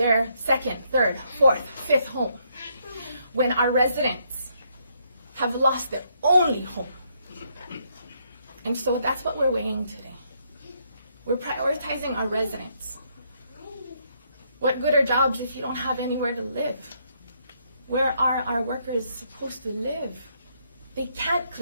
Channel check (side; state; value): both; inverted; correlation -0.74